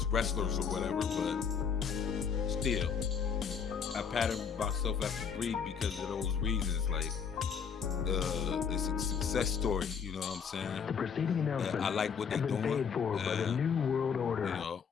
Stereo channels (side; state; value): right; quieter; 6.6 dB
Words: wrestlers or whatever, but still, I patterned myself after Brie because of those reasons. Like, it's a success story, you know what I'm saying? The preceding announcement, I like what they're doing. Paid for by the New World Order. You know,